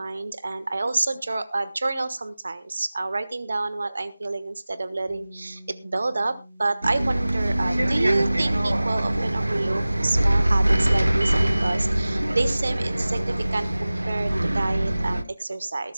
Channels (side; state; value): both; inverted; correlation -0.98